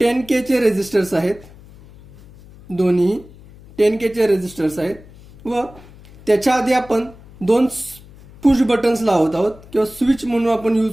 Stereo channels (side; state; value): left; noise; hum, 22 dB below the sound